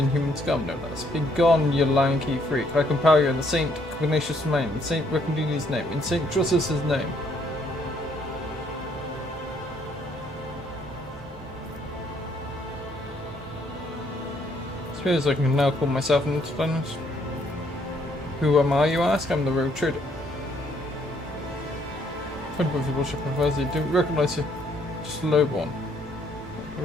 scum, no less. Be gone, you lanky freak. I compel you in the Saint Ignatius' name, in Saint Recondini's name, in Saint Justus' name. Suppose I can now call myself an intelligence. Who am I, you ask? I'm the rogue trader. Friend of your worship, I didn't recognize you. Just a lowborn.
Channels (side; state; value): both; normal; correlation 0.68